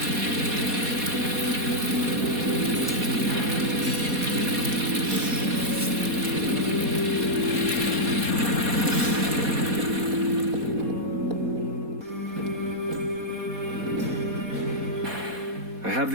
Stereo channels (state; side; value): late; left; 4.2 ms